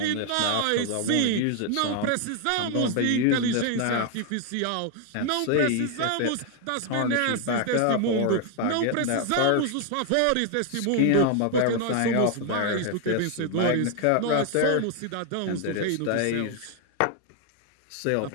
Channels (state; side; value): different; both; correlation 0.00